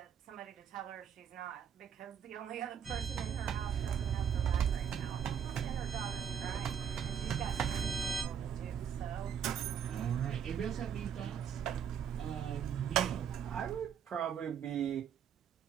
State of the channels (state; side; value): quieter; left; 8.4 dB